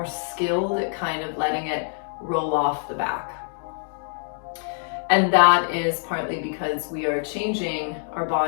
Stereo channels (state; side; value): silent; right; digital silence